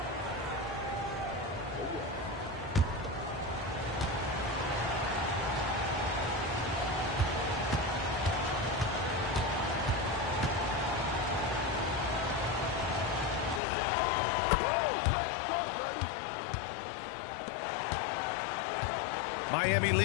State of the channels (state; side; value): drops out; right; at 13.6 s